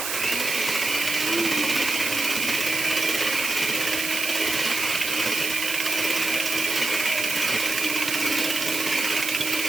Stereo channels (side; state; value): right; noise; hiss, 3 dB below the sound